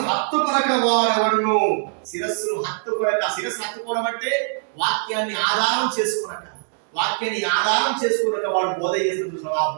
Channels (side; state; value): left; silent; digital silence